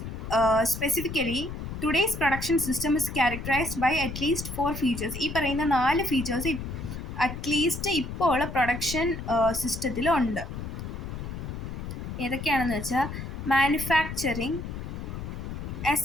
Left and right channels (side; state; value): left; noise; rumble, 7 dB below the sound